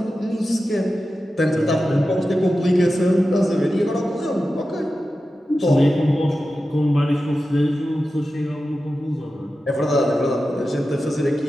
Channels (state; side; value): normal; both; correlation 0.93